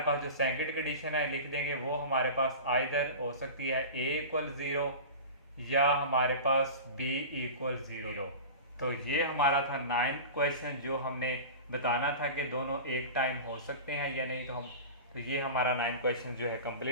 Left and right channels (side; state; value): both; inverted; correlation -0.32